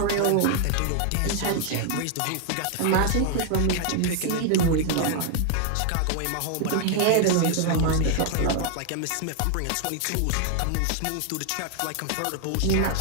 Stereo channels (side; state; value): both; different; correlation 0.00